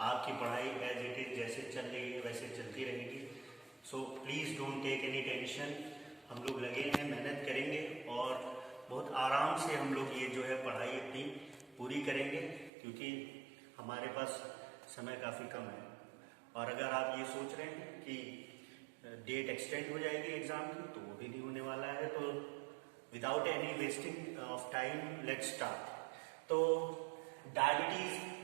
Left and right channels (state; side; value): drops out; left; at 12.7 s